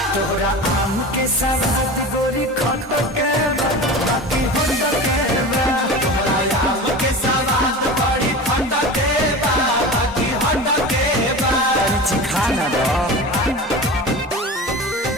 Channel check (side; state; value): both; normal; correlation 0.31